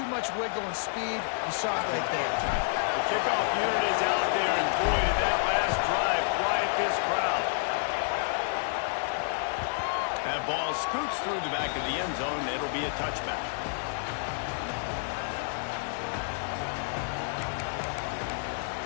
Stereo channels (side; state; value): right; silent; digital silence